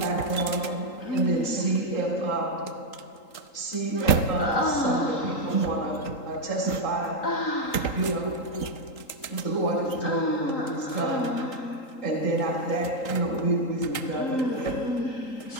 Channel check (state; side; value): late; right; 3.8 ms